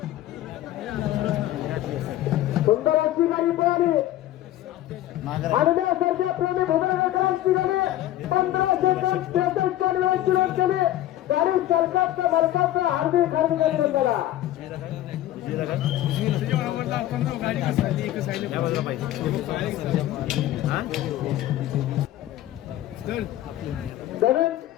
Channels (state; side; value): quieter; right; 13.9 dB